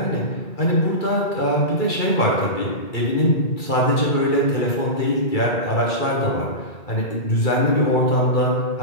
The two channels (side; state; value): right; late; 2.3 ms